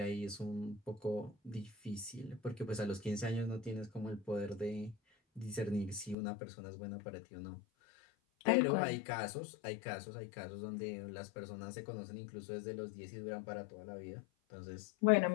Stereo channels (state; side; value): drops out; right; at 6.2 s